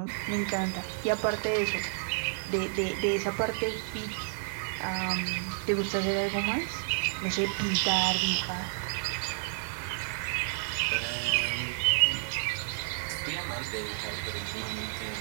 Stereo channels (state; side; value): silent; left; 57 dB below the other